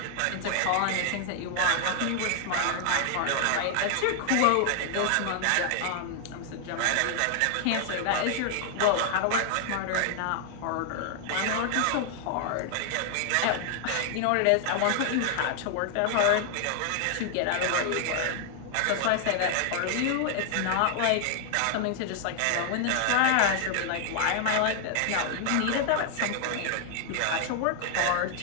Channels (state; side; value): different; both; correlation 0.00